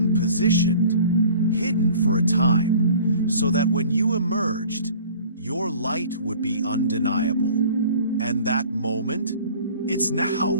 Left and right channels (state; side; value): inverted; both; correlation -0.47